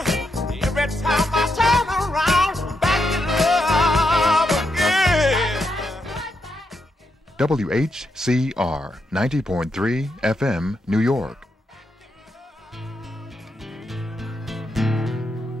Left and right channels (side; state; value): both; normal; correlation 0.82